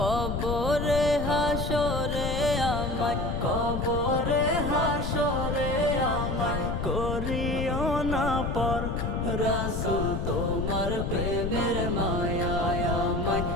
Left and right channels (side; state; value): left; noise; rumble, 2 dB below the sound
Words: হাসরে আমায়, কবরে হাসরে আমায় করিও না পর। রসুল তোমার প্রেমের মায়ায় আমায়